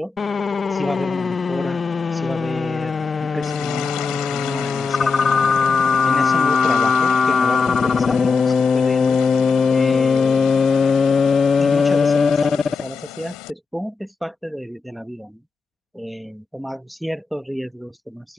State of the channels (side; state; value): right; quieter; 4.8 dB